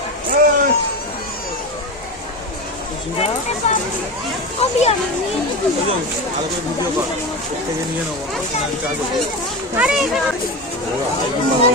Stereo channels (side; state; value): both; normal; correlation 0.23